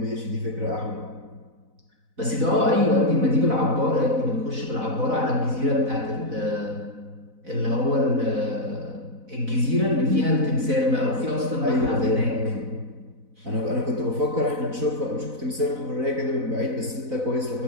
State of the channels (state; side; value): late; left; 4.0 ms